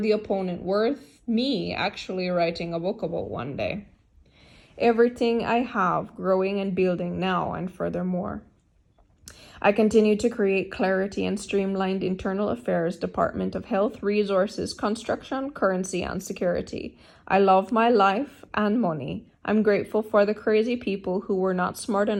opponent worth me actually writing a book about one day. Everything I have growing and building now and furthermore. I continue to create clarity and streamlined internal affairs, Department of Health, Resources, Construction, Currency, and Security. I love my life and money. I'm grateful for the crazy people who were not smart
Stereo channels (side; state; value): both; identical; correlation 1.00